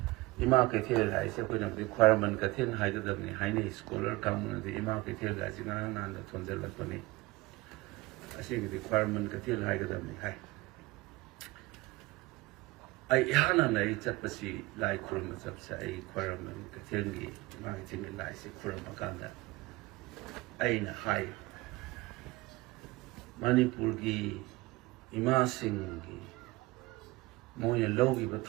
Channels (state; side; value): quieter; left; 21.1 dB